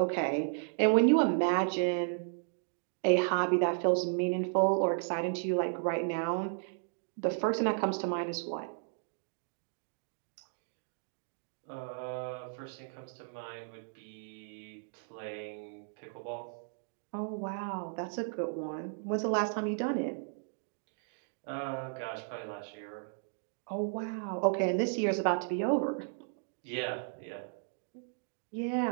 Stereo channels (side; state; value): left; silent; digital silence